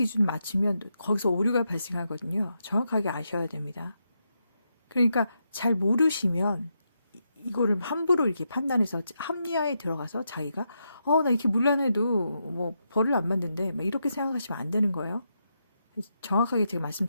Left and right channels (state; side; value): inverted; both; correlation -0.83